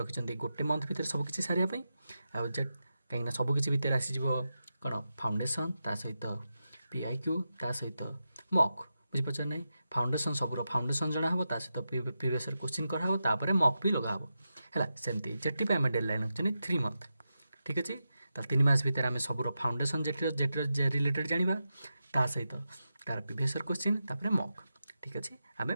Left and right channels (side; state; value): both; inverted; correlation -0.90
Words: रखिंट गोटे मंथ भितर सबकि सारे जेट कहीं सबकि भितर आसीज कौन फाउंडेसन ता सहित पीआईक्यू ता सहित मक बुझीपार ना फाउंडेसन सबूर फाउंडेसन जना हम सहित प्रीवियस क्वेश्चन कराव तापर मक भी लगा है सेमती जेटी आम डेडलाइन रखते 3 मंथ ठीक अच्छे 3 मास भितर आम सबूर फाउंडेसन जेटर रिलेटेड जाना ता सहित तार प्रीवियस क्वेश्चन तापर मक ठीक अच्छे आम